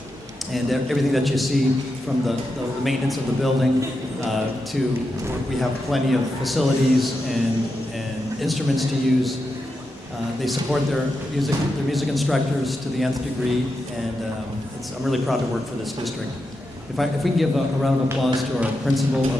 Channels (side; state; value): both; normal; correlation 0.87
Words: and everything that you see from the maintenance of the building to we have plenty of facilities and instruments to use. They support their music instructors to the nth degree, and I'm really proud to work for this district. If we can give a round of applause to our principal of